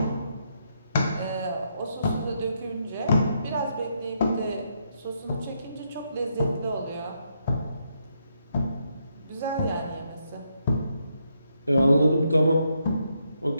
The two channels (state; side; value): inverted; both; correlation -0.78